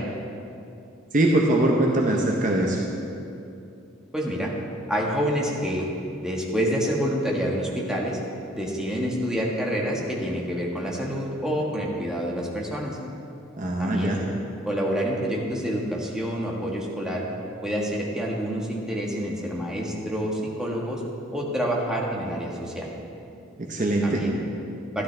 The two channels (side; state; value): both; normal; correlation 0.61